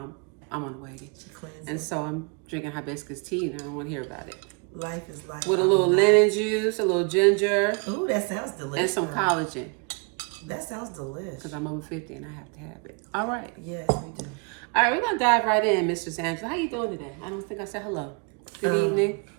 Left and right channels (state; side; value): quieter; left; 34.7 dB